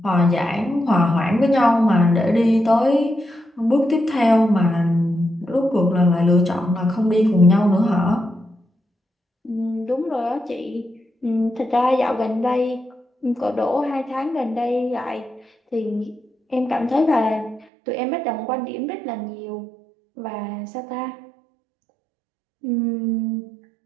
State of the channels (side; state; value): left; drops out; at 17.7 s